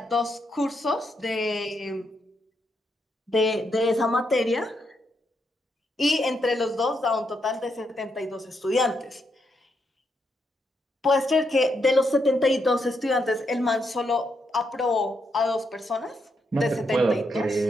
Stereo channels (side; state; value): both; normal; correlation 0.80